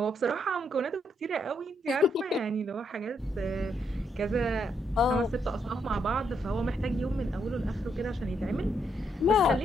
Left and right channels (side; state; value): both; normal; correlation 0.76